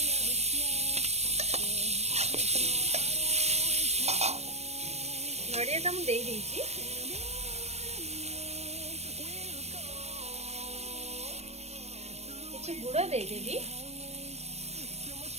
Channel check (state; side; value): late; left; 0.31 ms